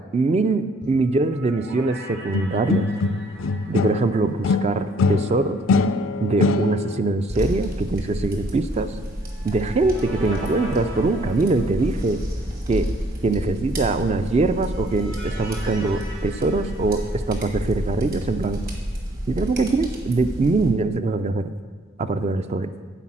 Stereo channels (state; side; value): normal; both; correlation 0.62